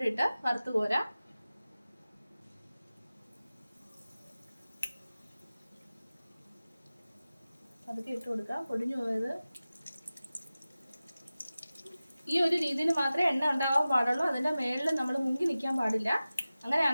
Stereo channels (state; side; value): inverted; both; correlation -0.96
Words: ഇട്ട് വറുത്ത് കോരാം. അതൊക്കെ ഇട്ട് കൊടുക്കാം, പൊടിഞ്ഞു പോയത്. ഈ ഒരു രീതിയിൽ മാത്രമേ എണ്ണ ഉണ്ടാവാൻ പാടുള്ളൂ. അതിൻ്റെ മേളിൽ നമ്മൾ മുങ്ങി നിൽക്കാൻ പാടില്ല.